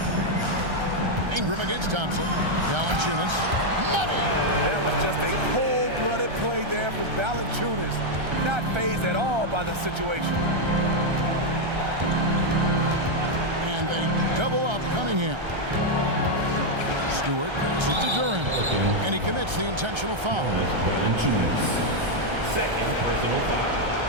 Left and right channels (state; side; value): late; left; 1.3 ms